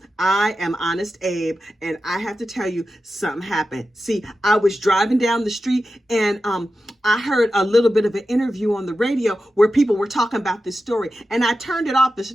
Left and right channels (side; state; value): both; normal; correlation 0.92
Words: I am Honest Abe, and I have to tell you something happened. See, I was driving down the street and I heard a little bit of an interview on the radio where people were talking about this story, and I turned it off as